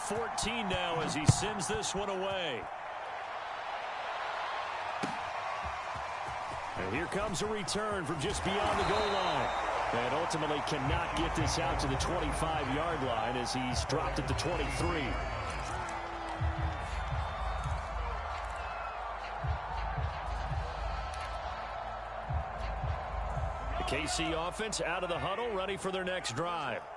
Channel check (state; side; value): identical; both; correlation 1.00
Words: now as he sends this one away. And here comes a return from just beyond the goal line. And ultimately cannot get this out to the 25-yard line as he's dropped at the 23. The KC offense out of the huddle, ready for their next drive.